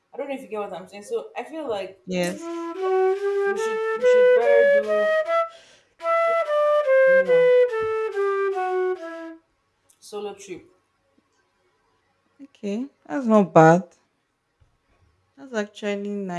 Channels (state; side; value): identical; both; correlation 1.00